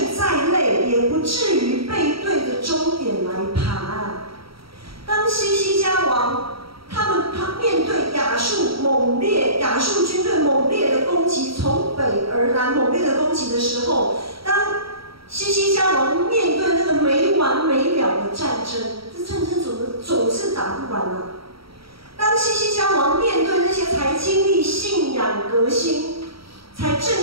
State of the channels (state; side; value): late; left; 0.75 ms